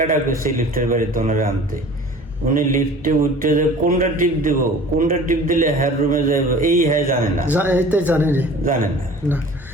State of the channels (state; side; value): normal; both; correlation 0.44